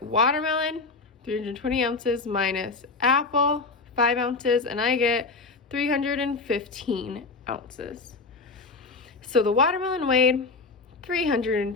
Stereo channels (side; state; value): right; quieter; 3.9 dB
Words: watermelon, 320 ounces minus apple, 5 ounces, and I get 315 ounces. So the watermelon weighed